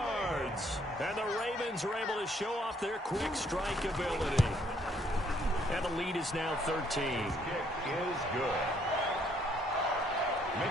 And the Ravens are able to show off their quick strike ability. And the lead is now 13. Kick is good.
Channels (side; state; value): both; normal; correlation 0.67